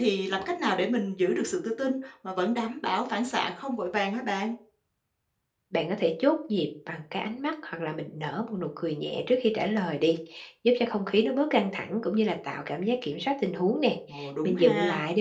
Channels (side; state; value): both; identical; correlation 1.00